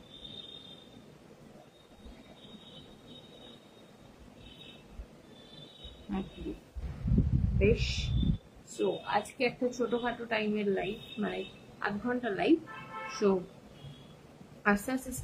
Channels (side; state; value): both; identical; correlation 1.00